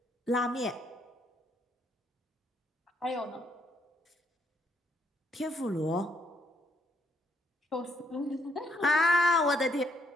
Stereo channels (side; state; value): both; normal; correlation 0.72